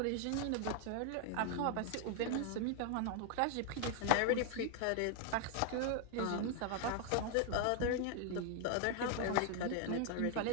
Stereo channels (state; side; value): different; both; correlation 0.00